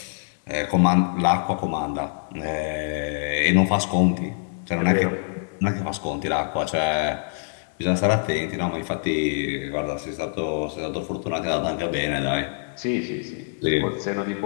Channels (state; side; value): silent; right; digital silence